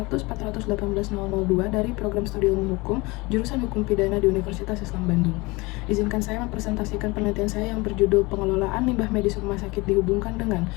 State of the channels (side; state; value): right; quieter; 24.1 dB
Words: dari Program Studi Ilmu Hukum, jurusan Hukum Pidana di Universitas Islam Bandung. Izinkan saya mempresentasikan penelitian saya yang berjudul Pengelolaan Limbah Medis Rumah Sakit dihubungkan dengan